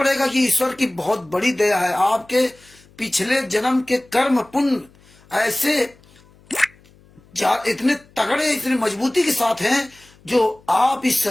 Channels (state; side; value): noise; left; hum, 29 dB below the sound